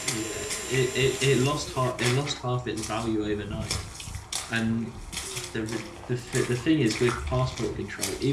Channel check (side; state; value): both; identical; correlation 1.00